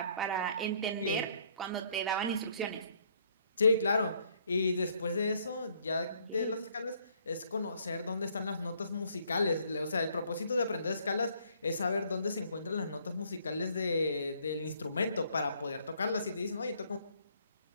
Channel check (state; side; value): inverted; both; correlation -0.65